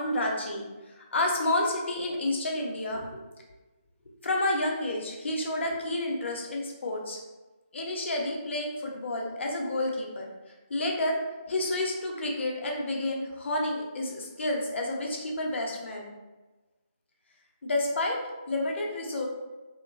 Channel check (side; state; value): both; inverted; correlation -0.63